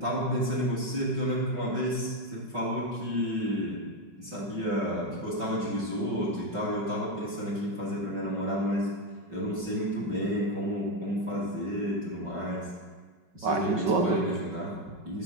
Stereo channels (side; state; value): left; late; 5.4 ms